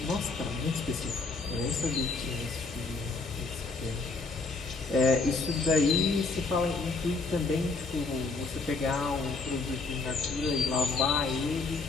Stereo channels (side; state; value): right; quieter; 3.9 dB